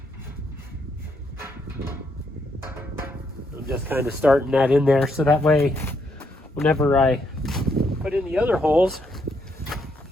I'm just kind of starting that in there so that way whenever I put in the other holes,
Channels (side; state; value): both; normal; correlation 0.75